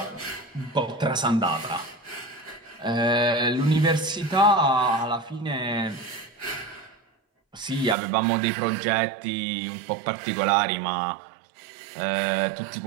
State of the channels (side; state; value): left; drops out; at 8.0 s